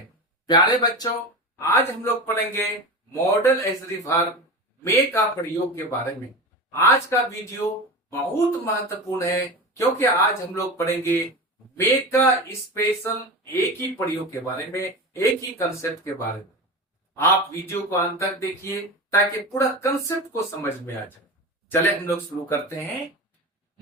प्यारे बच्चों, आज हम लोग पढ़ेंगे मॉडल एज वर्ब मे का प्रयोग के बारे में। आज का वीडियो बहुत महत्वपूर्ण है क्योंकि आज हम लोग पढ़ेंगे मे का स्पेशल एक ही प्रयोग के बारे में, एक ही कंसेप्ट के बारे में। आप वीडियो को अंत तक देखिए ताकि पूरा कंसेप्ट को समझ में आ जाए। चले हम लोग शुरू करते हैं।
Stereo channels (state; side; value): normal; both; correlation 0.26